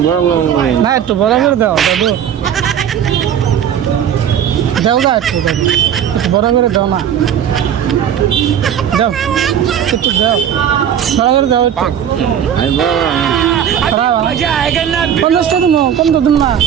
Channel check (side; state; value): left; quieter; 9.2 dB